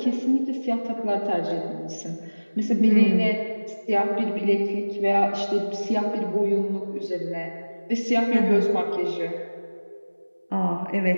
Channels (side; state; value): both; inverted; correlation -1.00